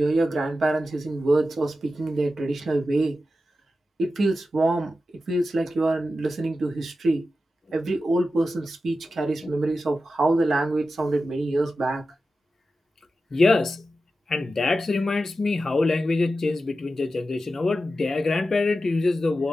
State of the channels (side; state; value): both; normal; correlation 0.92